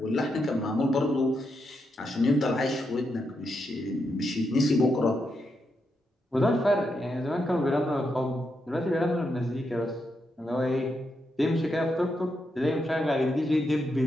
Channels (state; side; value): normal; both; correlation 0.83